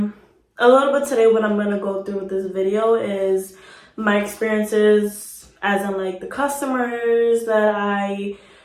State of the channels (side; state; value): both; identical; correlation 1.00